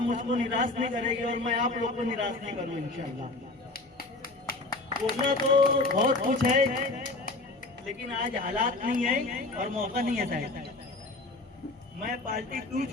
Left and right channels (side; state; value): right; quieter; 3.0 dB